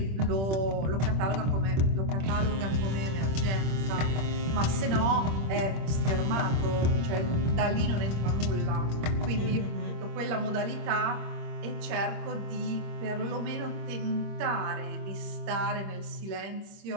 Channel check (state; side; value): late; left; 26 ms